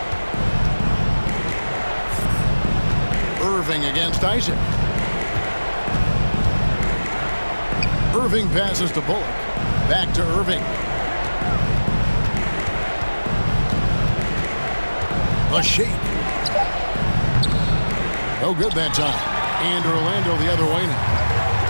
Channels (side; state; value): both; inverted; correlation -1.00